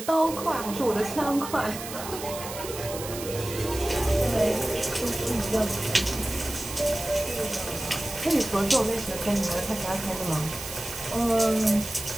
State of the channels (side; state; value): right; noise; hiss, 10 dB below the sound